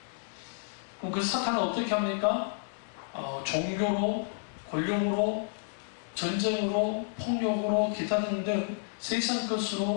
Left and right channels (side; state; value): right; silent; digital silence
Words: 그럼 그 사탄은 어떻게 합니까? 종교로, 권력으로, 전쟁으로, 폭력으로, 기타 등등 세상